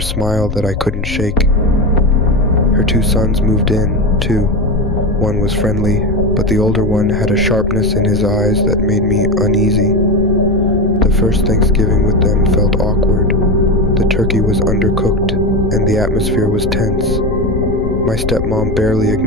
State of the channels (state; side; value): noise; left; rumble, 6 dB below the sound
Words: smile that I couldn't shake. Her 2 sons moved in, too. One was friendly, but the older one had a sharpness in his eyes that made me uneasy. The first Thanksgiving with them felt awkward. The turkey was undercooked, and the atmosphere was tense. My stepmom barely